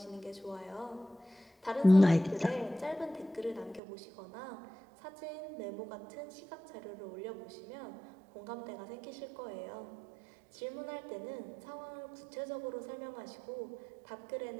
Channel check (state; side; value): drops out; left; at 3.8 s